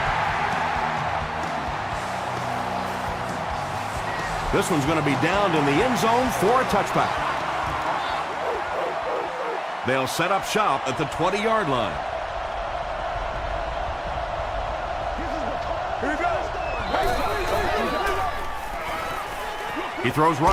This one's going to be down in the end zone for a touchback. They'll set up shop at the 20-yard line. He throws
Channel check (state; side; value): identical; both; correlation 1.00